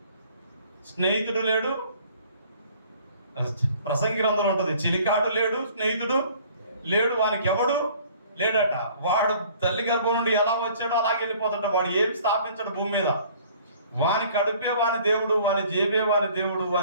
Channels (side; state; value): both; inverted; correlation -0.54